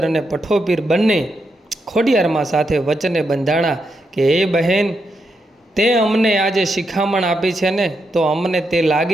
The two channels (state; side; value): normal; both; correlation 0.83